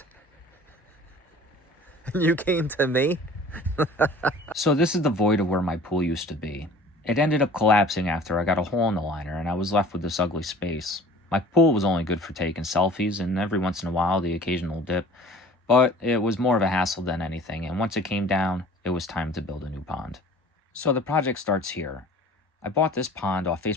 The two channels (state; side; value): normal; both; correlation 0.46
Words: And you came to me? So this is the void of where my pool used to be. It ended up collapsing after I got a hole in the liner and I was left with this ugly space. My pool was only good for taking selfies and every once in a while the occasional dip, but it was more of a hassle than anything, and once it came down, it was time to build a new pond. So the project starts here. I bought this pond off